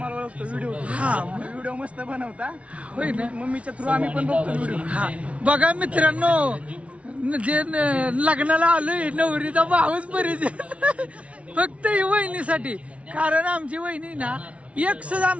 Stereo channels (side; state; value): left; late; 0.063 ms